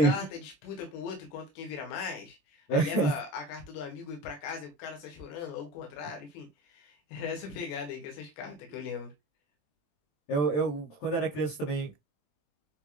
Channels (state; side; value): late; right; 20 ms